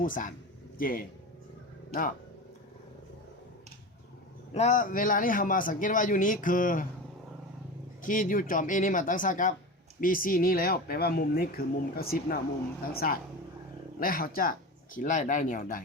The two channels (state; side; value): normal; both; correlation 0.27